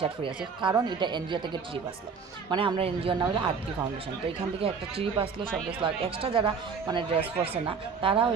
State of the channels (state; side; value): quieter; left; 5.7 dB